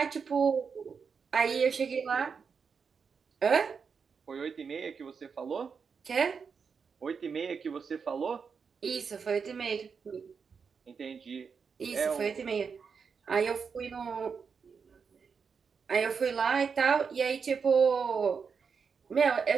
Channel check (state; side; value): quieter; left; 5.9 dB